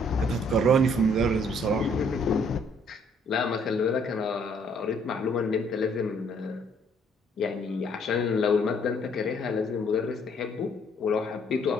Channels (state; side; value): normal; both; correlation 0.64